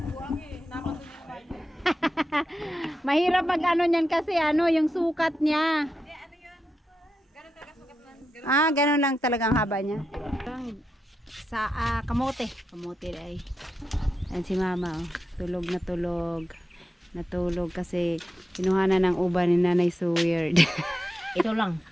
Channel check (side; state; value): both; normal; correlation 0.88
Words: Mahirap mag ano niyan kasi yung sukat niya. Ganun lang talagang haba niya. Sa kamote. Kamote ay. Ayan si mama. Tulog na tulog. Natulog kasi kinuhanan ng uban ni Nanay so weird. Ito lang.